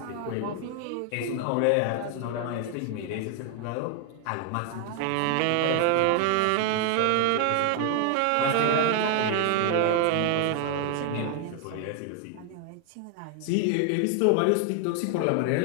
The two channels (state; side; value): different; both; correlation 0.00